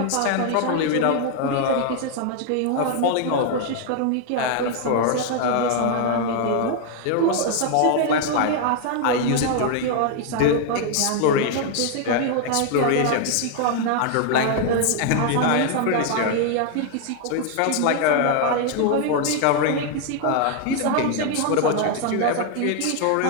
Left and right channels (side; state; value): both; different; correlation 0.00